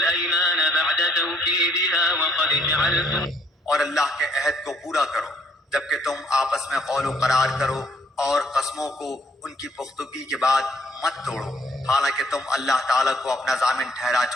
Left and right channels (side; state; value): both; normal; correlation 0.66